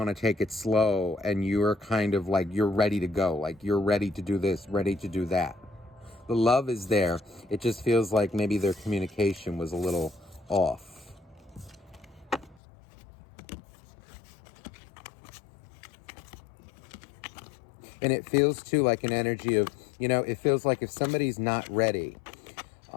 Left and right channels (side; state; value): right; drops out; at 12.6 s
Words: to take it slow and you're kind of like, you're ready to go. Like you're ready to do this, ready to do that. The love is there. It just feels like maybe their communication was a little off. And it feels too like an energy of, it feels like if somebody's not ready